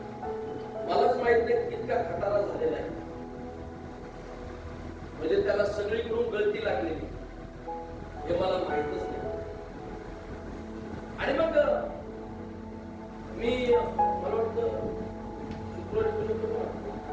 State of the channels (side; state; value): both; identical; correlation 1.00